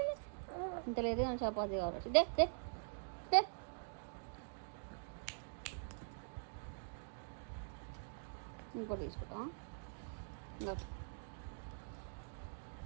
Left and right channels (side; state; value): left; silent; digital silence